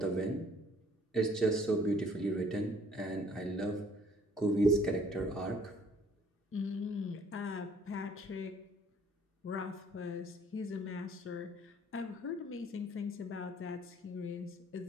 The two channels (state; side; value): normal; both; correlation 0.59